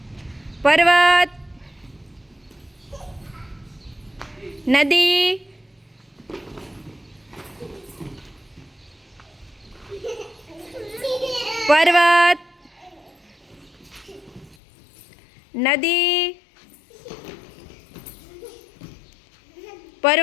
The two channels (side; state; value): right; drops out; at 14.6 s